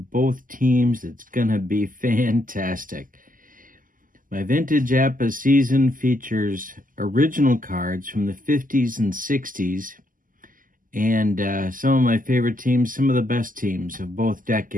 teams. It's going to be fantastic. My Vintage APBA season features original cards from the 50s and 60s. And some of my favorite teams, some of the best teams of both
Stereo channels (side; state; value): left; late; 0.40 ms